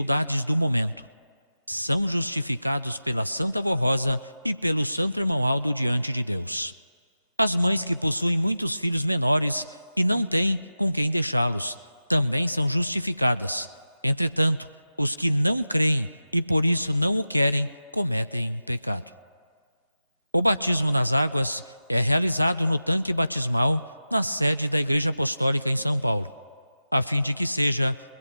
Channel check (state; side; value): inverted; both; correlation -0.95